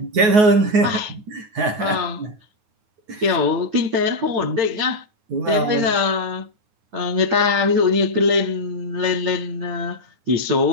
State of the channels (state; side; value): late; left; 9.5 ms